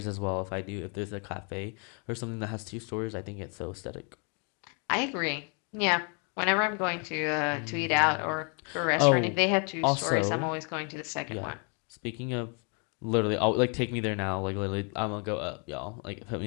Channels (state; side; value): quieter; right; 37.0 dB